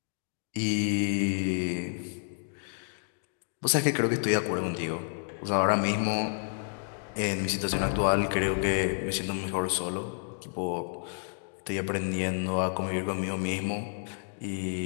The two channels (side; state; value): right; silent; digital silence